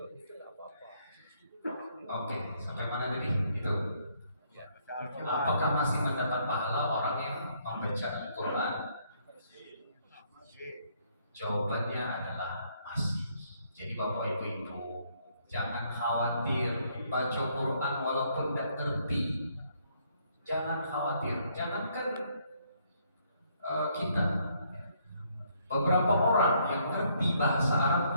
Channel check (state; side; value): inverted; both; correlation -0.69